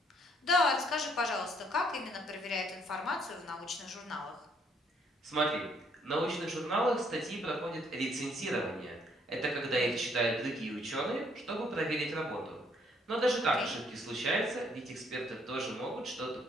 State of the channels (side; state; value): both; normal; correlation 0.67